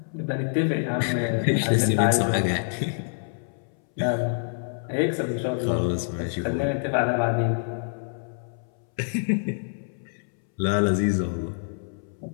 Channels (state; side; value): silent; right; 61 dB below the other